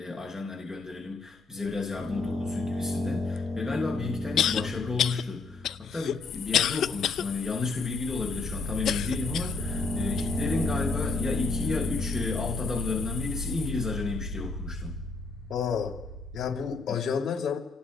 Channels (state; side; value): quieter; right; 4.2 dB